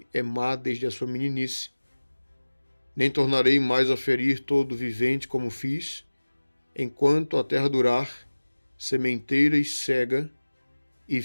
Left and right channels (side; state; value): both; inverted; correlation -1.00